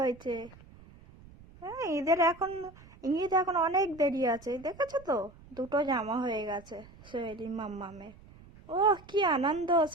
হ্যাঁ, ঈদ এখন অনেক দেরি আছে, দেখেছো তো? দুটো জামা হয়ে গেছে শৈলী মামামের। ও কি আনন্দ,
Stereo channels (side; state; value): right; noise; rumble, 22 dB below the sound